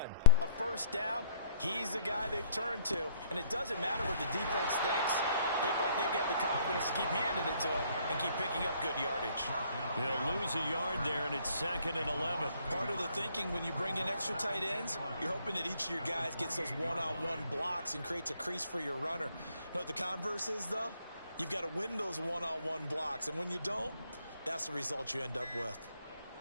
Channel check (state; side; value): inverted; both; correlation -0.62